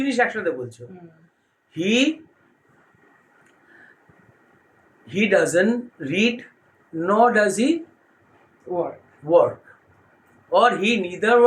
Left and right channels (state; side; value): identical; both; correlation 1.00